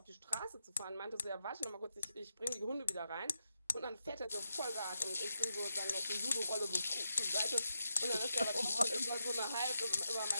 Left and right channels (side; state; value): both; inverted; correlation -0.86